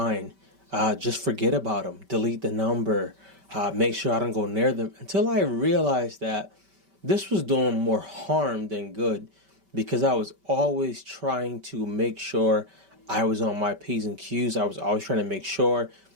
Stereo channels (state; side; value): late; left; 5.2 ms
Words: Just forget about them. Delete the number. Make sure I don't go near them. Until I realized that this was doing more harm than good, because I was always trying to make sure I was on my P's and Q's. I was always trying to make sure